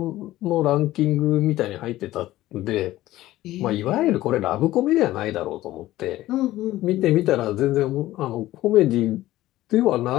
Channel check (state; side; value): quieter; right; 15.7 dB